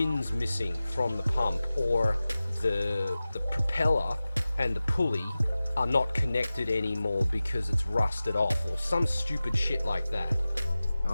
missing from the pump, or the propeller and the pulley are not connected anymore because it's rusted off, or some stupid shit like that.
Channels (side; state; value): both; inverted; correlation -0.96